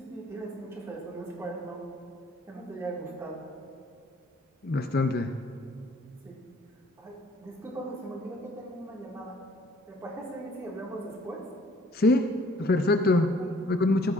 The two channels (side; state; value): both; normal; correlation 0.58